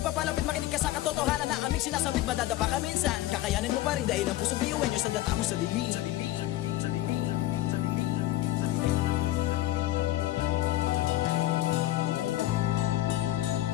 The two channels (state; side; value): quieter; right; 15.4 dB